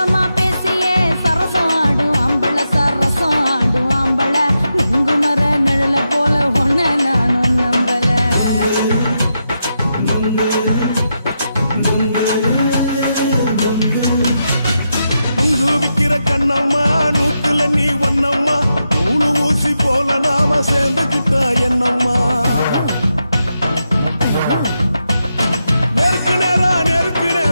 பேசியே சரசம் ஆடும் ஆம்பள சரசம் ஆடும் ஆம்பள நுங்கு மர நிழல போல ஒன்ன நானும் நம்பல நுங்கு விக்கிற கண்ணம்மா நூத்துல நீ ஒன்னம்மா நூலு ஊசி போல நாம சேர்ந்துக்கிட்டா என்னம்மா நேருக்கு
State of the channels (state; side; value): inverted; both; correlation -0.86